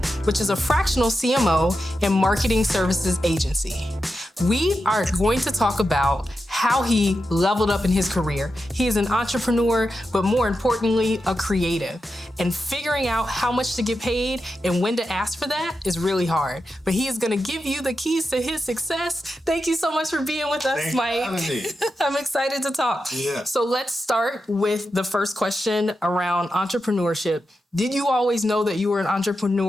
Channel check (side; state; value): both; normal; correlation 0.89